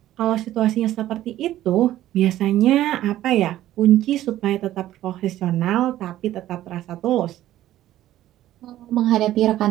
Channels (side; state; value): left; quieter; 13.7 dB